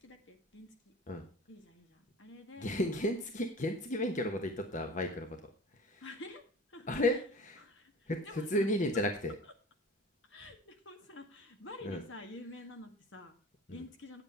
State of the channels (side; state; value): both; normal; correlation 0.40